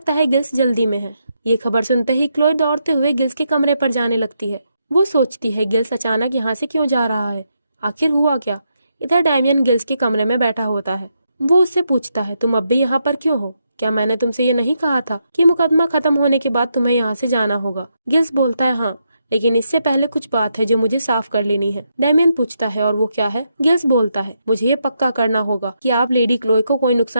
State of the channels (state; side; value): inverted; both; correlation -0.81